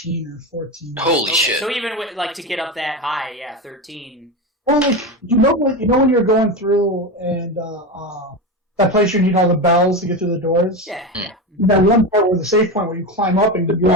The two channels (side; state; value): both; normal; correlation 0.19